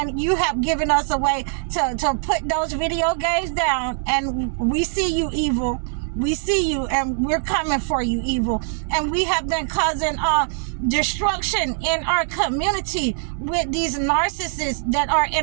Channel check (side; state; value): left; silent; 64 dB below the other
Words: you have given us a way to put those video games down. And we see you, evil. We see you, and we're coming for you, evil. And we have been causing destruction in our community with these narcissists that are